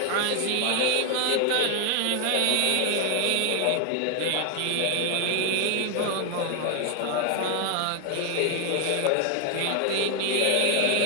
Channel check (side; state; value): both; different; correlation 0.00